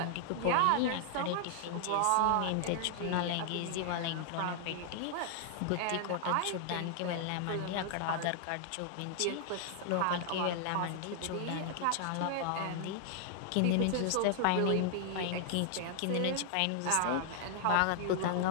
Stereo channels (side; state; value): both; different; correlation 0.00